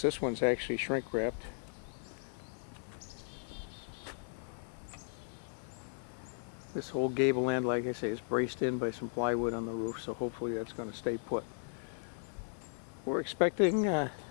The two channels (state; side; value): silent; right; digital silence